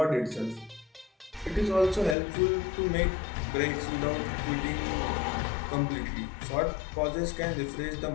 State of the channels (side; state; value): right; drops out; at 2.1 s